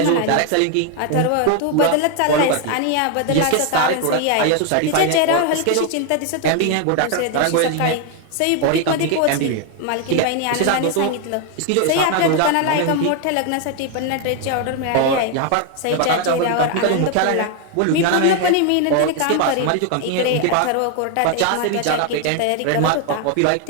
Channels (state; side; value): different; both; correlation 0.01